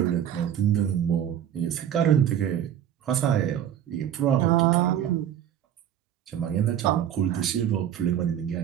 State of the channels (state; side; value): quieter; left; 10.2 dB